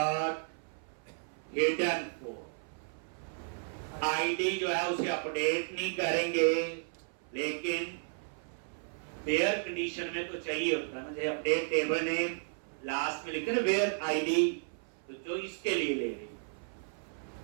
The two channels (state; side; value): silent; left; 55 dB below the other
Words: hidden code, ID जो है उसे अपडेट नहीं करेंगे, लेकिन वेयर कंडीशन में तो चाहिए होता है ना, अपडेट टेबल नेम लास्ट में लिखे ना वेयर आईडी, तो जो इसके लिए ले रही,